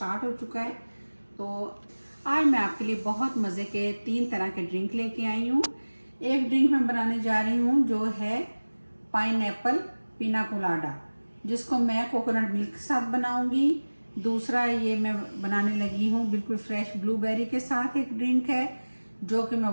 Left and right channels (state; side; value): inverted; both; correlation -1.00